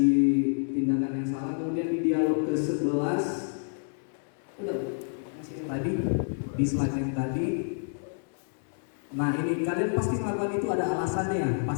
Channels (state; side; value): silent; right; digital silence